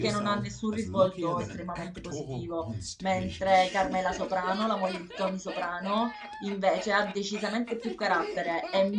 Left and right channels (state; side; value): identical; both; correlation 1.00